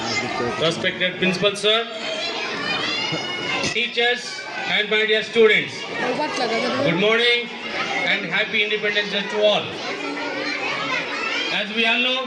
respected Principal Sir, teachers and my dear students, good morning and happy Independence Day to all. As we all know,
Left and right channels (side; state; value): both; identical; correlation 1.00